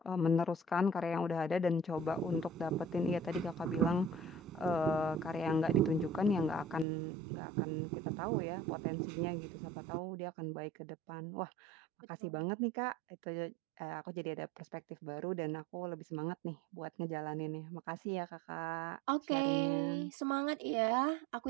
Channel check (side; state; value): left; drops out; at 6.9 s